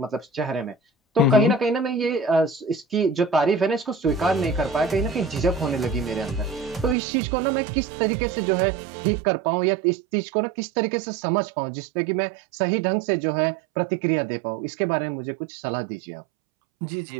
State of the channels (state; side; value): drops out; left; at 7.0 s